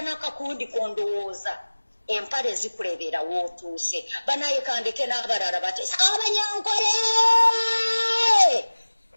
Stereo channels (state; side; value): inverted; both; correlation -1.00